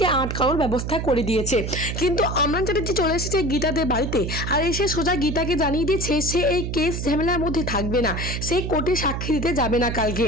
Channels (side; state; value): right; noise; hum, 4 dB below the sound